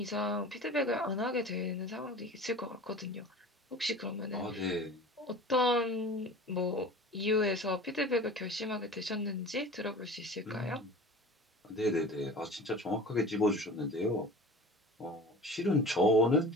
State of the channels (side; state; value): both; normal; correlation 0.38